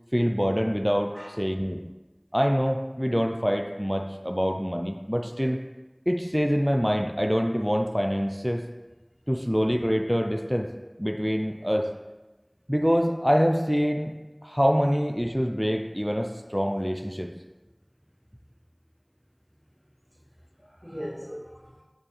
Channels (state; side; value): identical; both; correlation 1.00